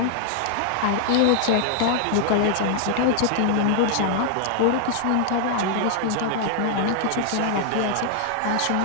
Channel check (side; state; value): both; different; correlation -0.01